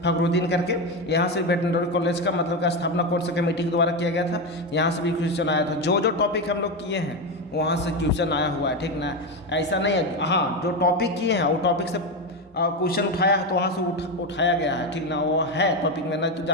फखरुद्दीन करके, यहाँ से वेटनरी कॉलेज का मतलब का स्थापना कौन सा कमेटी के द्वारा किया गया था, यहाँ से भी क्वेश्चन आया था। जो जो टॉपिक हम लोग किए हैं वहाँ से क्वेश्चन आया हुआ है, ठीक ना। ऐसा नहीं है, हाँ जो टॉपिक किए हैं वो टॉपिक से क्वेश्चन उठाया है तो वहाँ से उठाया गया है, ठीक ना। वो है टॉपिक में, नहीं तो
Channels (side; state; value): both; normal; correlation 0.13